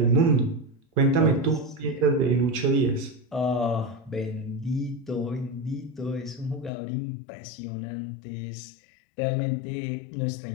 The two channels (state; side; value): drops out; right; at 6.7 s